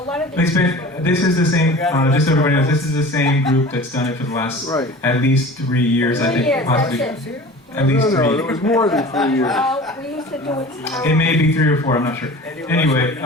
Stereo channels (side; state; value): both; normal; correlation 0.39